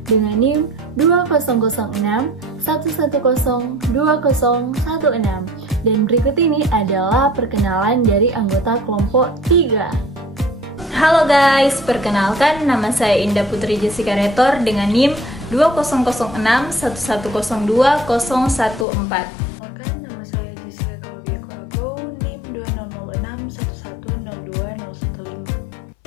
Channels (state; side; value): drops out; right; at 18.9 s